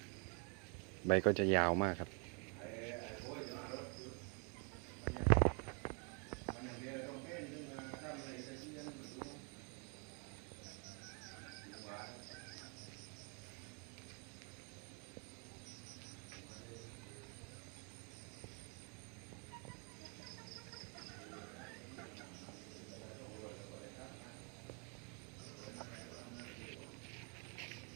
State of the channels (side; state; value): left; quieter; 36.7 dB